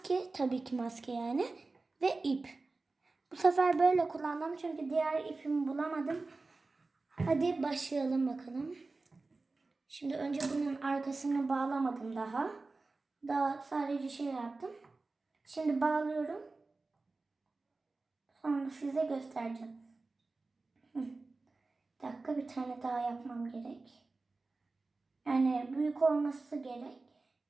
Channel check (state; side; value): quieter; left; 3.6 dB